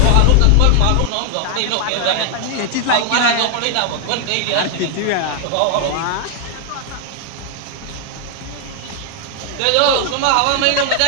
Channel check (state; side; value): different; both; correlation 0.00